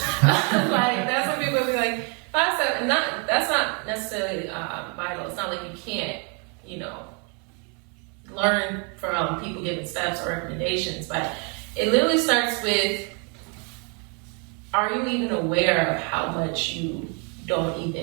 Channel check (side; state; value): left; quieter; 35.7 dB